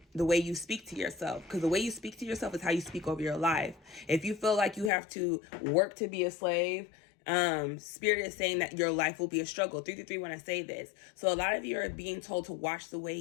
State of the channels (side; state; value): right; drops out; at 4.9 s